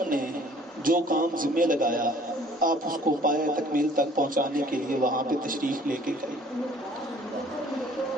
نے جو کام ذمہ لگایا آپ اس کو پایہ تکمیل تک پہنچانے کے لیے وہاں پہ تشریف لے کے گئے۔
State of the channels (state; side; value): normal; both; correlation 0.54